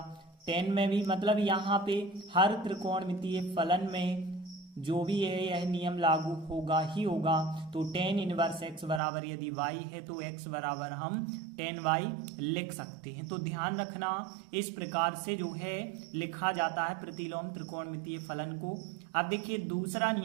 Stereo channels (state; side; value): drops out; left; at 9.0 s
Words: टेन में भी, मतलब यहाँ पे हर त्रिकोणमितीय फलन में जो भी है यह नियम लागू होगा ही होगा। तो टेन इनवर्स एक्स बराबर यदि y है तो x बराबर हम टेन y लिख सकते हैं। तो ध्यान रखना, इस प्रकार से जो है लिखा जाता है प्रतिलोम त्रिकोणमितीय फलन को। अब देखिए दूसरा